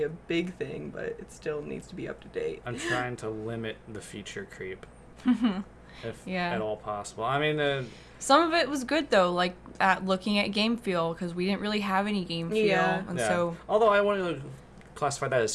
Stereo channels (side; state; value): both; identical; correlation 1.00